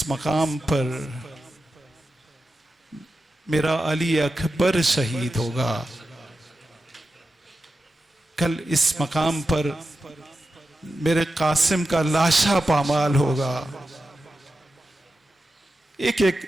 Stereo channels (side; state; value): both; normal; correlation 0.91